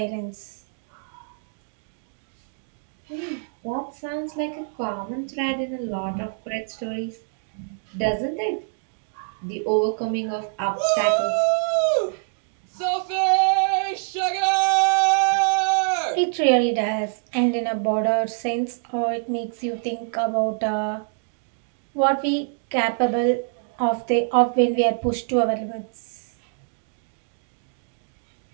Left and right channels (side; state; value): left; silent; digital silence